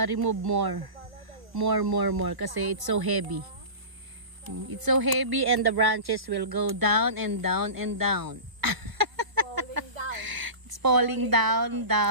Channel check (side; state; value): left; late; 1.2 ms